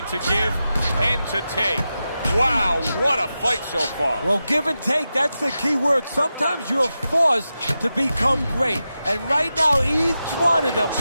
to give and to take. Wow, what a fight so far. Well, give and take, that's the key word. Sometimes you're forced to become great. And right now, each one of them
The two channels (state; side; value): inverted; both; correlation -0.91